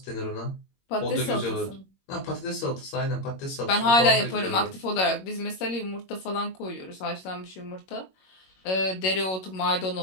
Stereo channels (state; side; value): late; right; 21 ms